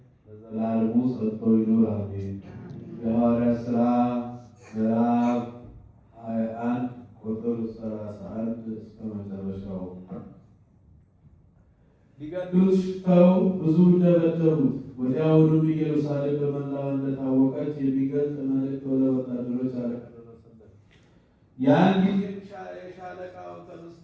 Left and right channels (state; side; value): identical; both; correlation 1.00